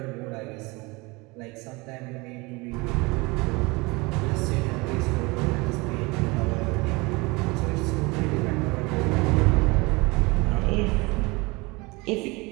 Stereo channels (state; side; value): quieter; left; 25.1 dB